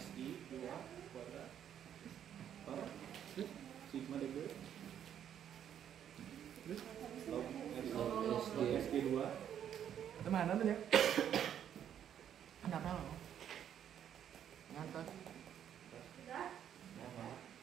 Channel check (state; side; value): quieter; left; 9.6 dB